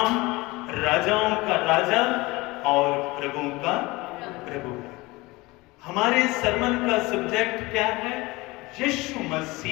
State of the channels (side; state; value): right; quieter; 22.3 dB